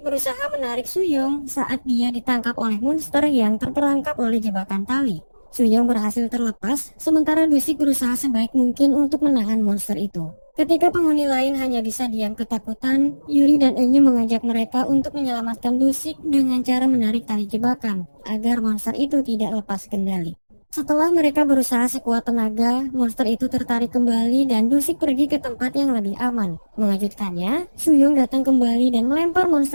menarik Suyong saat dia ditangkap oleh monster yang terperangkap oleh jebakan tali. Suyong berhasil terlepas, sementara Dusik berusaha sebaik mungkin untuk menahan monster itu. Ketika penghuni lain hanya bisa diam ketakutan, Yuri dan Enyu mengajak mereka untuk menyelamatkan Dusik dengan cara menarik tali jebakan, agar monster itu tidak lepas kendali. Setelah mereka berusaha sekuat tenaga, monster itu tertarik kembali dan Dusik pergi ke tempat yang lebih aman. Mengejutkannya, Suyong datang kembali dan melempar monster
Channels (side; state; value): both; inverted; correlation -1.00